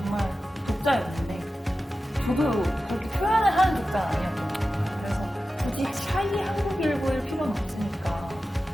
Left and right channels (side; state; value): both; normal; correlation 0.93